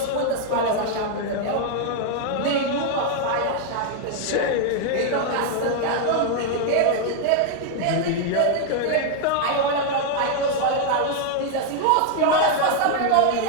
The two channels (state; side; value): different; both; correlation 0.00